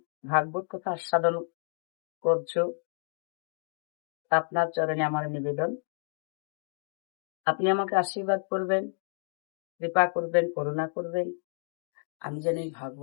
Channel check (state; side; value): silent; right; digital silence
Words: ভাগবত কথা আস্বাদন করছো, আপনার চরণে আমার নিবেদন, আপনি আমাকে আশীর্বাদ করবেন, কৃপা করবেন, করুণা করবেন, আমি যেন এই